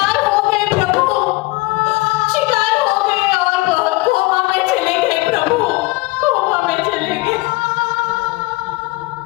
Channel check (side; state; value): right; quieter; 22.0 dB